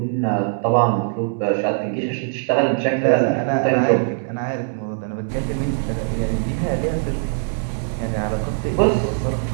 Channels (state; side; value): silent; left; 65 dB below the other